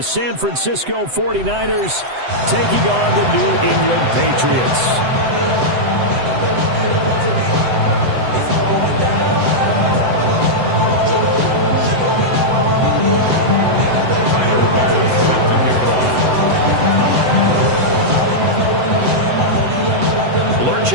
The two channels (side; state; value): left; late; 7.9 ms